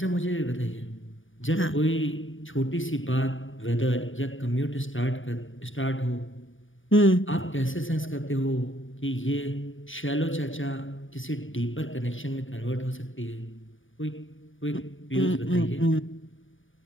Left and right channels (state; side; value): late; right; 0.57 ms